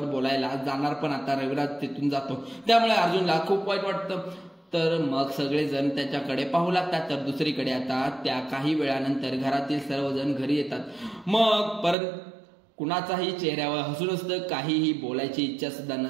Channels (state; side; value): drops out; left; at 12.0 s